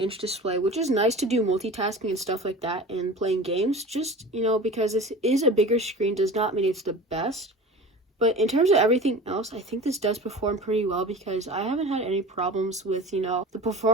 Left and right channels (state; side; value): normal; both; correlation 0.36